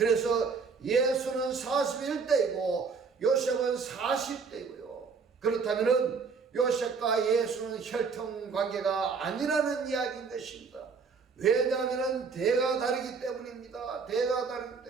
예수는 41대이고 요셉은 40대이고요. 그렇다면은 요셉과 예수는 혈통관계가 아니라는 이야기인 것입니다. 왜냐하면 대가 다르기 때문입니다. 대가 다르기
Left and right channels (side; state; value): left; quieter; 5.1 dB